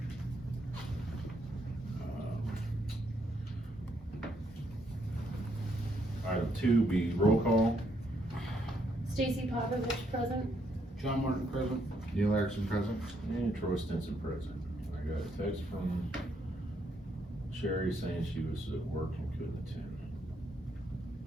Item 2 be roll call. Stacy Popovich present. John Martin present. Neil Erickson present. And Troy Stinson present. I got a text from Sherry saying she was at work and couldn't attend.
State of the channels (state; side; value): normal; both; correlation 0.74